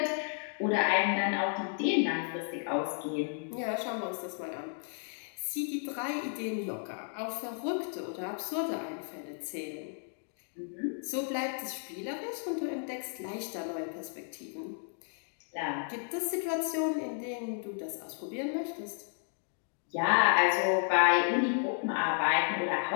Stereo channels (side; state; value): right; silent; 56 dB below the other